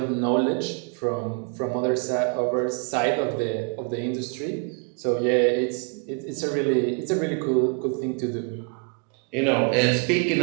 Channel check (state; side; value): quieter; left; 38.1 dB